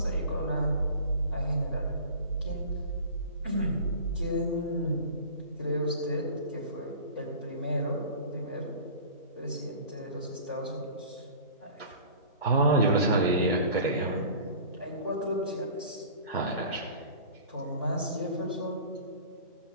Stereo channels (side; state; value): both; inverted; correlation -0.41